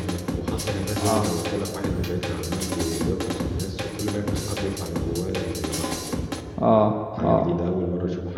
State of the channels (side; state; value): both; identical; correlation 1.00